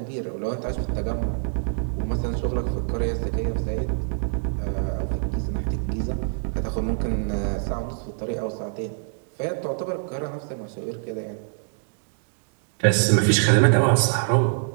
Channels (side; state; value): left; silent; digital silence